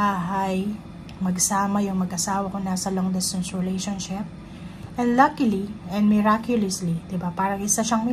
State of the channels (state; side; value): identical; both; correlation 1.00